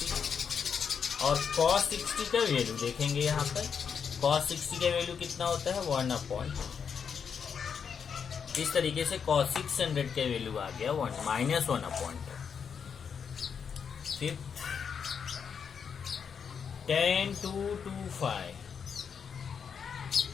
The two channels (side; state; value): right; quieter; 6.8 dB